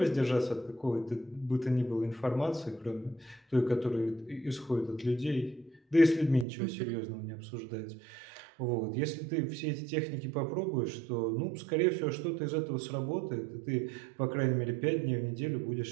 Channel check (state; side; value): drops out; left; at 6.5 s